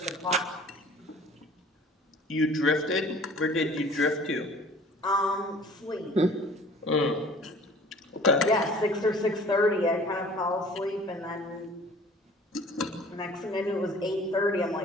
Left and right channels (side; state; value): both; normal; correlation 0.49